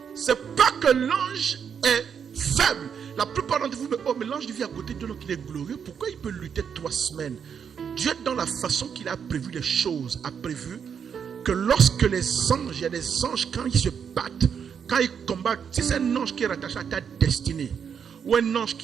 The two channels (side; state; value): left; quieter; 7.3 dB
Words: c'est pas que l'ange est faible. La plupart d'entre vous me disent, oh mais l'ange vit à côté de Dieu donc il est glorieux. Pourquoi il peut lutter 3 semaines? Dieu dans la façon qu'il a prévu les choses, a prévu que lorsque les anges, il y a des anges quand ils se battent, quand ils combattent, si c'est un ange qui est rattaché à ta destinée, ou un ange